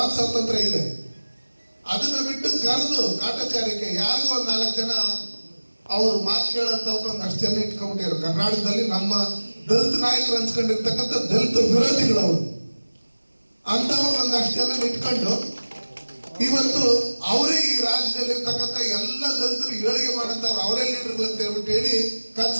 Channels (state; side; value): inverted; both; correlation -1.00